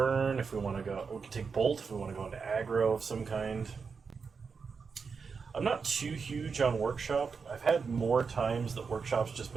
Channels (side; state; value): left; quieter; 5.4 dB